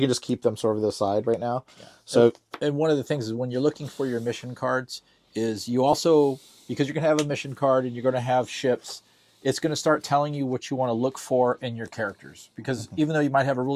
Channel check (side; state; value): both; identical; correlation 1.00